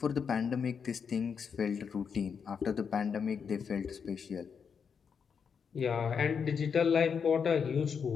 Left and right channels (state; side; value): quieter; right; 6.5 dB